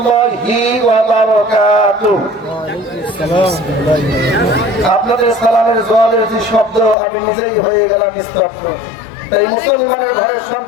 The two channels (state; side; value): drops out; right; at 7.0 s